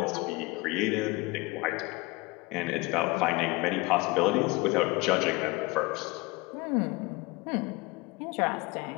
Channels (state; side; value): quieter; right; 24.0 dB